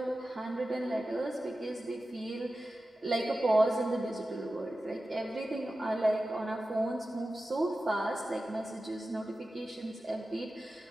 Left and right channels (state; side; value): normal; both; correlation 0.94